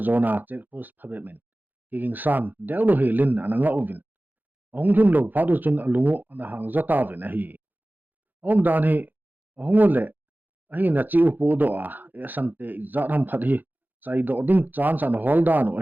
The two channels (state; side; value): late; left; 0.086 ms